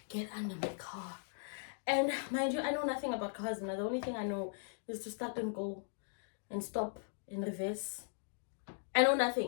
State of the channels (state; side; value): silent; right; digital silence